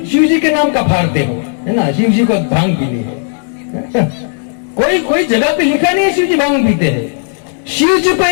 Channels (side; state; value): right; silent; digital silence